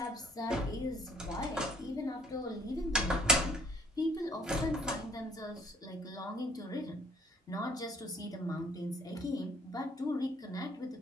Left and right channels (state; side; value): normal; both; correlation 0.60